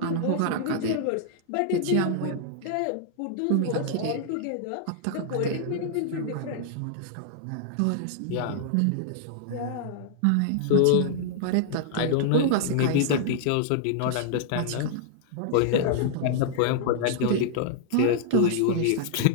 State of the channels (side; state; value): both; different; correlation -0.01